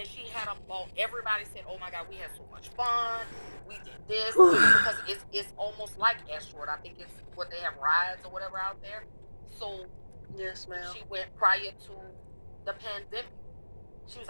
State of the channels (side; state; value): both; inverted; correlation -1.00